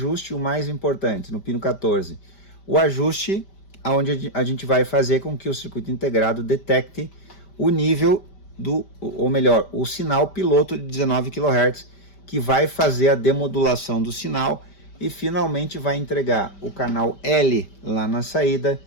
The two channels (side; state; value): right; late; 5.1 ms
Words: o mais importante, no pino 14, o ajuste onde a gente vai fazer com que o circuito integrado detecte o nível ou melhor, o sinal piloto de 19 kHz, que vai fazer a demodulação do sinal e finalmente vai entregar o canal L lá na saída